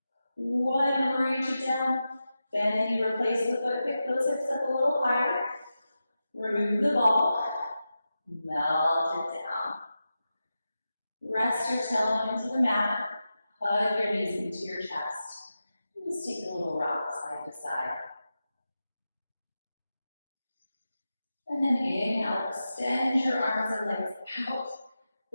1. Reach it down. Bend the knee, replace the foot. Pick those hips up a little higher. Remove the ball. Melt it down. Rest your tailbone into the mat. Hug your knees into your chest. And just take a little rock side to side. And then inhale, extend your arms and legs out.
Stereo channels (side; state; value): both; inverted; correlation -0.91